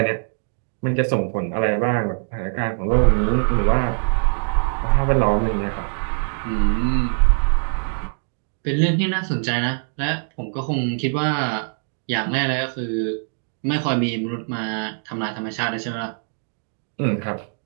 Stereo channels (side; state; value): left; silent; digital silence